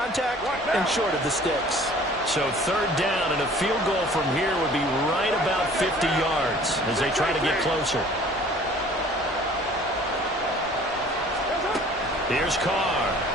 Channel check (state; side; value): normal; both; correlation 0.51